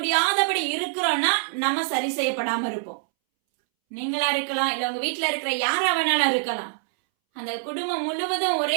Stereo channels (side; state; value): left; silent; 62 dB below the other